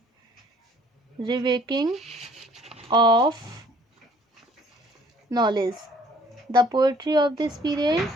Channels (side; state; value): both; normal; correlation 0.57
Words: rewaking of knowledge. The poetry of this period